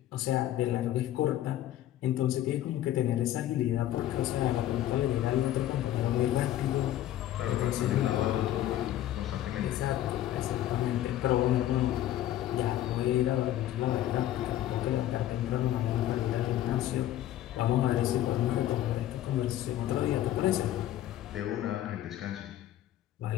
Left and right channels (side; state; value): right; quieter; 12.9 dB